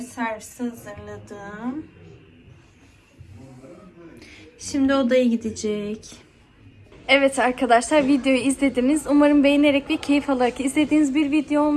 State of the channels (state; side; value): identical; both; correlation 1.00